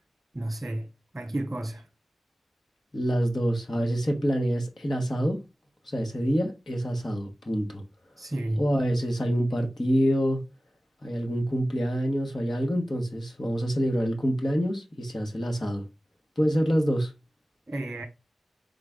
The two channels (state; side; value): normal; both; correlation 0.96